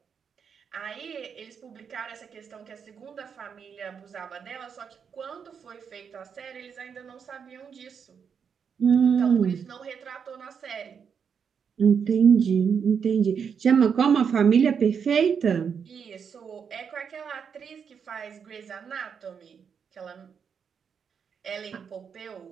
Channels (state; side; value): quieter; left; 6.9 dB